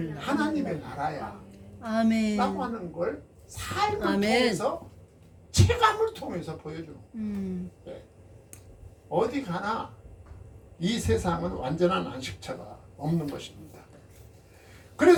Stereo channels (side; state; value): both; identical; correlation 1.00